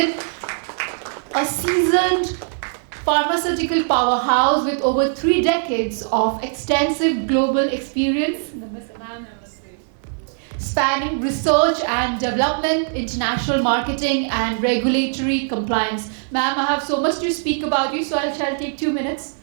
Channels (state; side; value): silent; left; digital silence